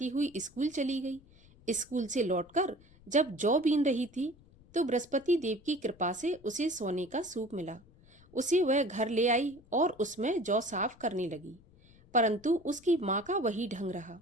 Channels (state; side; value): noise; left; rumble, 26 dB below the sound